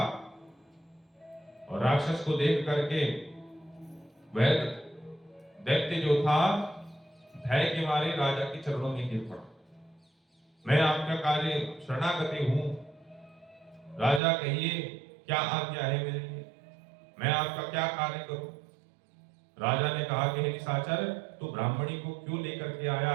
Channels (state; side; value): drops out; left; at 14.2 s